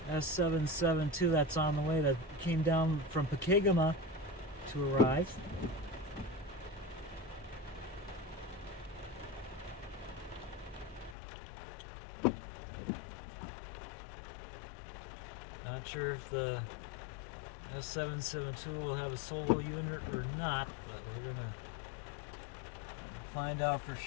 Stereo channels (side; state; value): right; drops out; at 11.2 s